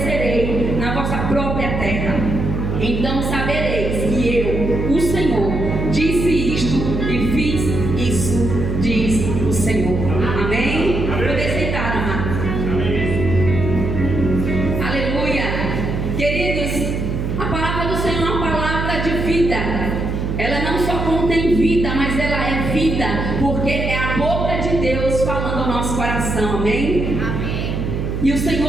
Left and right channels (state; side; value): noise; right; hum, 2 dB below the sound